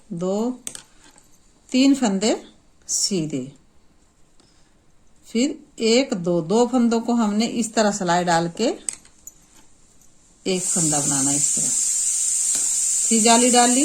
2 3 फंदे सीधे, फिर 1 2 फंदों को हमने इस तरह सिलाई डाल के एक फंदा बनाना इस तरह। फिर जाली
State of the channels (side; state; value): both; identical; correlation 1.00